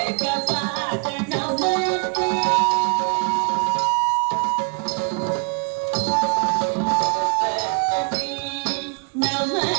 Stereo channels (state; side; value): quieter; left; 36.1 dB